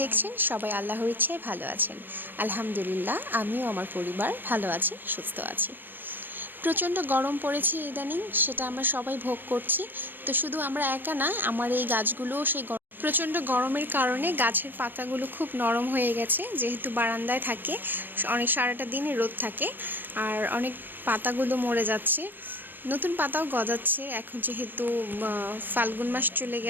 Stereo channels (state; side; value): late; left; 0.093 ms